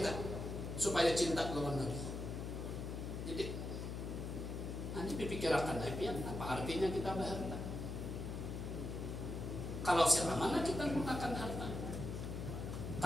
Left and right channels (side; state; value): left; noise; hum, 5 dB below the sound